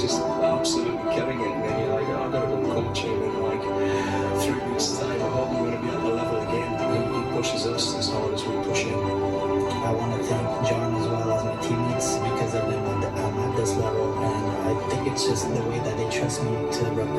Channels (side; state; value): both; identical; correlation 1.00